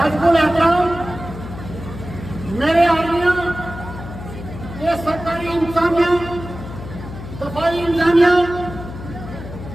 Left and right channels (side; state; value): left; noise; hum, 11 dB below the sound